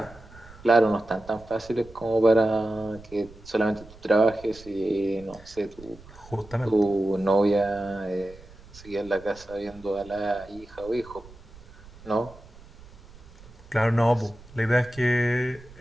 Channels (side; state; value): right; noise; rumble, 21 dB below the sound